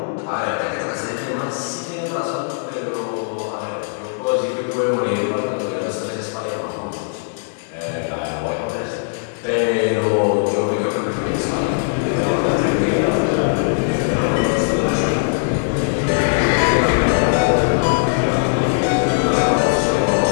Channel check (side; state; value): right; silent; digital silence